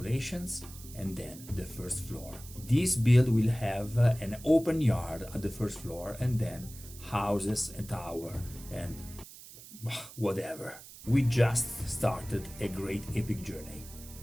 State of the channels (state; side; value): noise; right; hiss, 17 dB below the sound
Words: and then the first floor. This build will have an open yard at the first floor and then houses and tower and whatever. We just started a great epic journey.